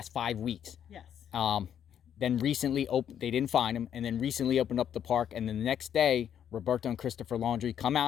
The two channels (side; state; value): right; quieter; 9.3 dB